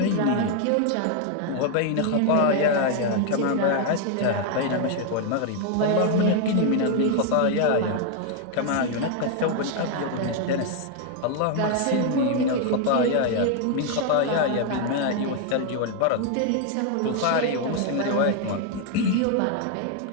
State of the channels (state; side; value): different; both; correlation 0.00